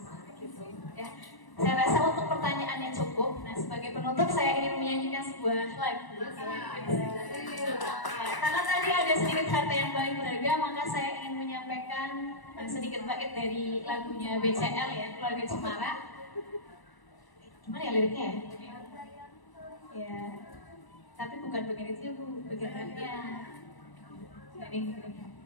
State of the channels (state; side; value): late; right; 1.0 ms